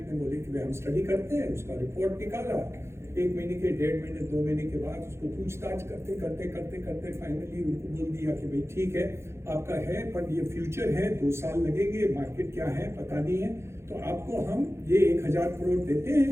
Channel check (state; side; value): late; left; 0.13 ms